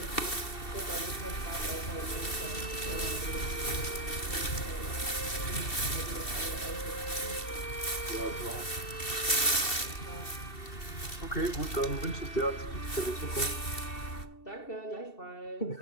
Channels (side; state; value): right; late; 2.7 ms